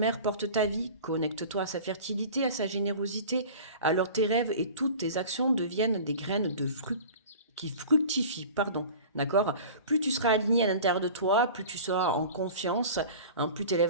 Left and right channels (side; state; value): both; inverted; correlation -0.39